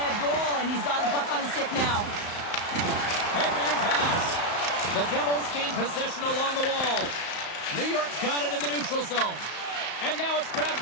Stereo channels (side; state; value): right; late; 34 ms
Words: goal, and he's got the puck on his stick now. Headman pass. The Devils gain possession along the wall. New York's got it in the neutral zone. And now it's grabbed